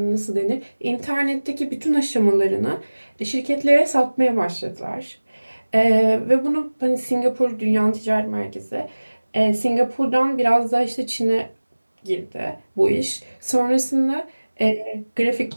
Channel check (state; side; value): inverted; both; correlation -1.00